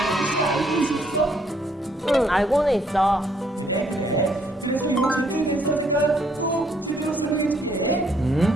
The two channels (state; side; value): normal; both; correlation 0.68